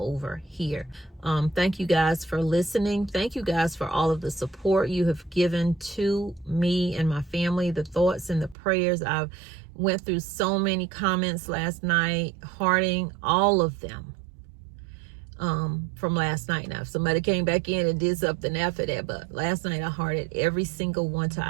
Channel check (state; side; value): drops out; left; at 8.6 s